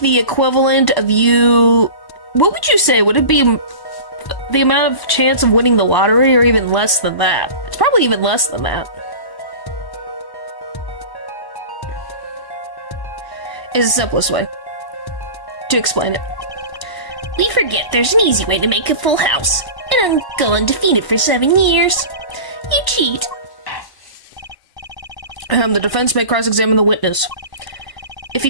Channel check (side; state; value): right; late; 1.0 ms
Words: the equivalent of you... What would you say? Would it be the amount of chance of winning the lottery, or even less than that? It's probably even less than that. Is the simplest way to explain it. We forget there's an easy way to make a full house, and go undefeated for 7 years. You cheat. The defense may cross-examine the witness. If he